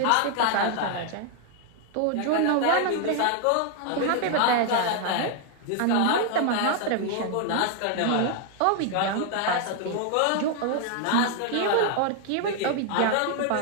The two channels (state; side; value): different; both; correlation 0.00